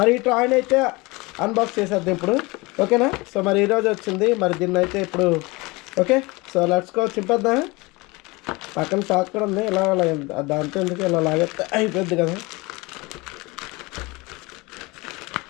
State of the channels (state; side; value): quieter; right; 24.2 dB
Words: ఈ టాయ్ని అయితే అన్బాక్స్ చేసేద్దాం ఇప్పుడు, ఓకేనా. సో మరి ఈరోజు వచ్చింది మరి దీన్ని అయితే ఇప్పుడు ఓకే. సో లెట్స్ గో చింపేద్దాం. పక్కన షాక్ కూడా ఉంది, ఇలా దాంతో ఎందుకు ఇలా లాగేస్తే అయిపోద్ది కదా.